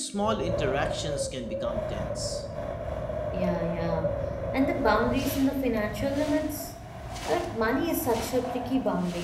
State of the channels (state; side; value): identical; both; correlation 1.00